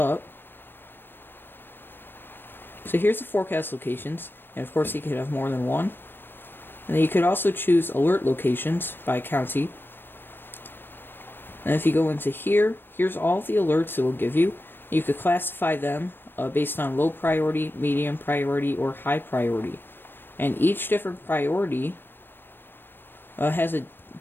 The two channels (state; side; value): late; right; 0.097 ms